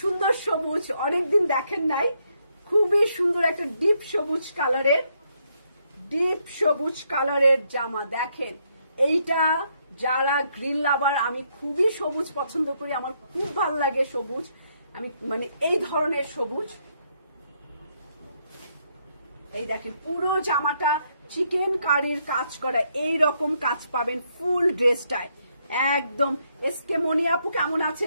সবুজ অনেকদিন দেখেন নাই। খুবই সুন্দর একটা ডিপ সবুজ কালারের জামা। দেখেন, এইটা যারা গ্রিন লাভার, আমি খুবই সবুজ পছন্দ করি, আমার খুব ভালো লাগে সবুজ, আমি মানে এই ধরনের সবুজ। এই দেখেন পুরো জামাটা চিকেন কারির কাজ করা, এই রকম কাজ পাবেন ফুল ড্রেসটায় একদম। এসকে মনি আপু কেমন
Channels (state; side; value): inverted; both; correlation -0.75